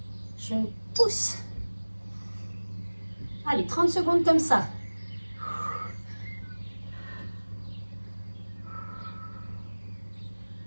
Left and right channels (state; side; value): inverted; both; correlation -1.00